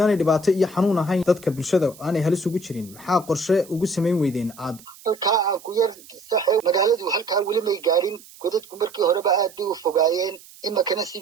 dhibaato iyo xanuun ahayn dadka bulshada aanay halis ugu jirin maxaa qorshe ugu samayn weydeen aad halkaa aan ku yar saxay magaaladu halkaa weli may gaadhin godadku markii horeba aad bay u fogaayeen imakana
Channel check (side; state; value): right; noise; hiss, 22 dB below the sound